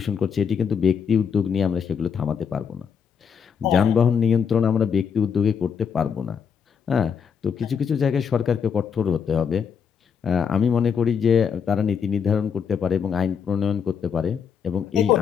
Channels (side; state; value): right; quieter; 6.9 dB